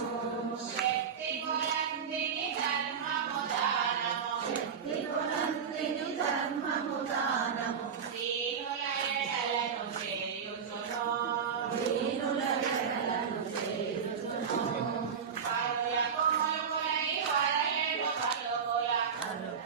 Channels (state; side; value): quieter; left; 6.8 dB